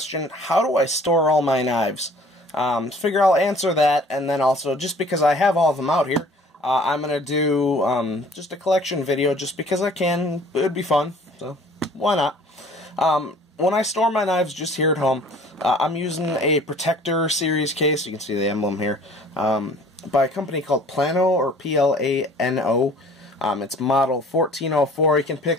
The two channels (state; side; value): normal; both; correlation 0.51